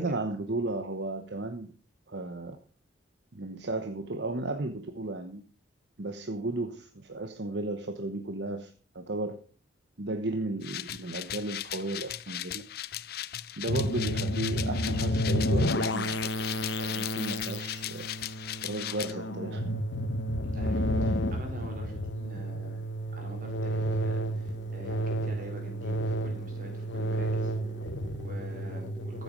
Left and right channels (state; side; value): normal; both; correlation 0.46